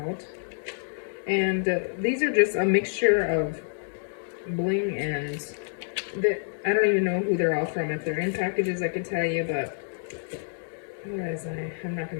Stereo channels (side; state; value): right; silent; digital silence